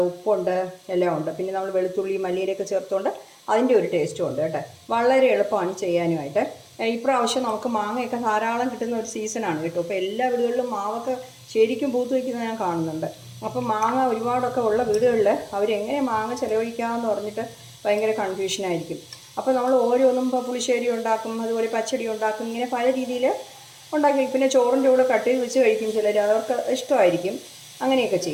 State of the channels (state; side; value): identical; both; correlation 1.00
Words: ഉപ്പുണ്ട്, എല്ലാം ഉണ്ട്. പിന്നെ നമ്മൾ വെളുത്തുള്ളി മല്ലിയിലൊക്കെ ചേർത്തുകൊണ്ട് അതിൻ്റെ ഒരു ടേസ്റ്റും ഉണ്ട് കേട്ടോ. വളരെ എളുപ്പമാണ് ചെയ്യാനുമായിട്ട്. ഇപ്രാവശ്യം നമുക്ക് മാങ്ങയൊക്കെ ധാരാളം കിട്ടുന്ന ഒരു സീസണാണ് കേട്ടോ. അപ്പോൾ എല്ലാ വീടുകളിലും മാവൊക്കെ ശരിക്കും പൂത്ത് വയ്ക്കുന്നത് ഞാൻ കാണുന്നുണ്ട്. അപ്പം മാങ്ങ ഒരുപാടൊക്കെ ഉള്ള വീടുകളിൽ അവരെങ്ങനെ മാങ്ങ ചിലവഴിക്കാമെന്ന് പറഞ്ഞിട്ട് ഭയങ്കര കൺഫ്യൂഷനായിരിക്കും. അപ്പോൾ നമ്മൾ ഓരോന്നും ഇപ്പോൾ പുളിശ്ശേരി ഉണ്ടാക്കും, അതുപോലെ പച്ചടി ഉണ്ടാക്കും, ഇങ്ങനെ പല രീതിയിൽ ഉണ്ടാക്കി. പിന്നെ ചോറിൻ്റെ കൂടെ കട്ട് ചെയ്ത് വെച്ച് കഴിക്കും ചിലർ, അവർക്ക് ഇഷ്ടമായിരിക്കും, അങ്ങനെയൊക്കെ